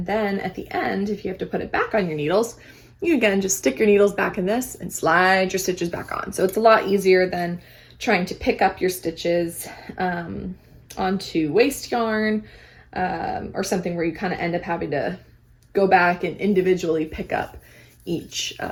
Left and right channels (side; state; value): both; identical; correlation 1.00